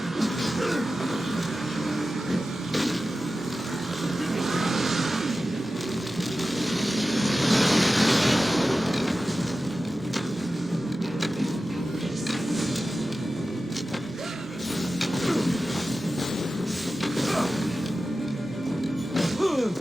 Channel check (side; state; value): both; normal; correlation 0.94